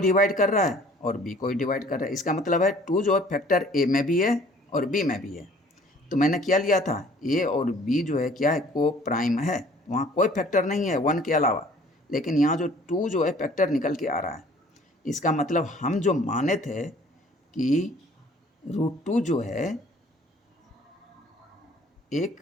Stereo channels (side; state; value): both; normal; correlation 0.54